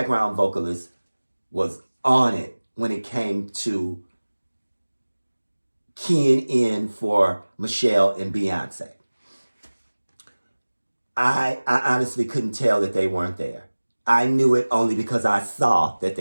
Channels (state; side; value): inverted; both; correlation -1.00